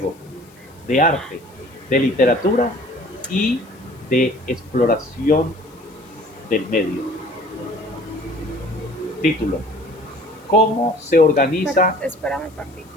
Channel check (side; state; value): left; noise; hiss, 28 dB below the sound